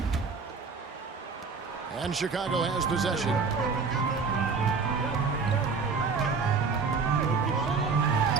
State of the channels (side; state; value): left; quieter; 5.0 dB